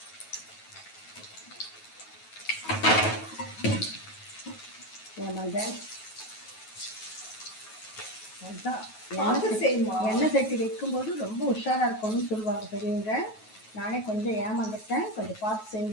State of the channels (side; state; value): right; late; 9.3 ms